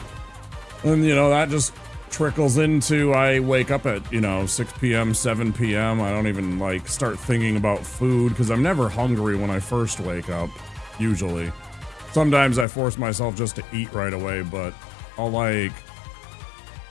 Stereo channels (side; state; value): right; drops out; at 12.7 s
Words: And, you know, that just trickles into I wake up at, you know, 6 p.m., 7 p.m. I don't even, like, start thinking about food because I'm never hungry when I first wake up, usually. Sometimes I force myself just to eat right away, but I'll, like...